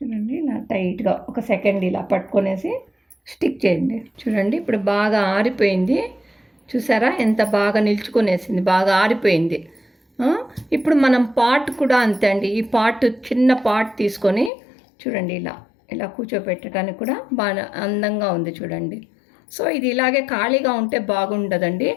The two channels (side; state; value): right; drops out; at 14.5 s